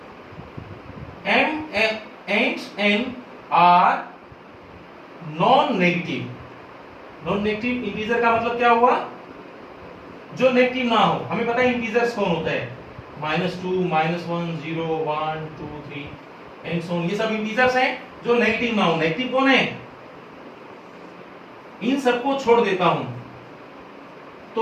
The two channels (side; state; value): both; identical; correlation 1.00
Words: m and n are non-negative। non-negative integer का मतलब क्या हुआ, जो नेगेटिव ना हो। हमें पता है इंटीजर्स कौन होता है, -2 -1 0 1 2 3 एंड सो ऑन, ये सब इंटीजर्स हैं जो नेगेटिव ना हो। नेगेटिव कौन है, इन सबको छोड़ देता हूं,